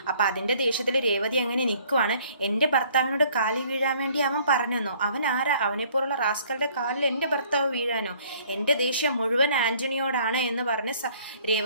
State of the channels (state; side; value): inverted; both; correlation -0.58